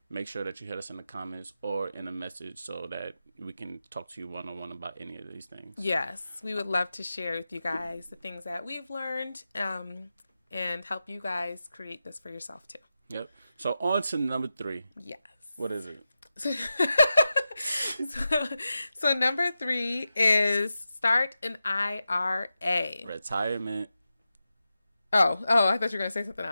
make sure that you hit us in the comments or in a message so that we can talk to you one-on-one about any of these things. Yes, we would love to share with you guys the things that we've learned and help you guys create this for yourself too. Yep. So on to number 3. Yes. What is it? So number 3 is start an IRA. Retirement. Oh, I thought you were going to say something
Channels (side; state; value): both; inverted; correlation -0.91